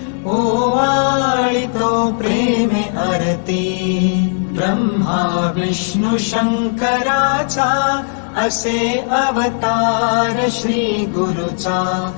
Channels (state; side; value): silent; right; digital silence